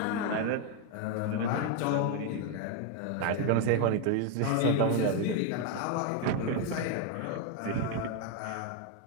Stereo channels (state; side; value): different; both; correlation 0.01